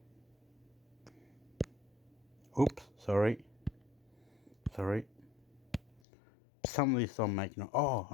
Oops, sorry. Some of these don't make no. Oh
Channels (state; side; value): drops out; right; at 6.0 s